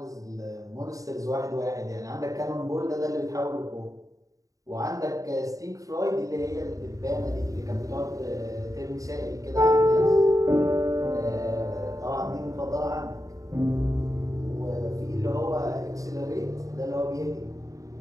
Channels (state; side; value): late; left; 0.16 ms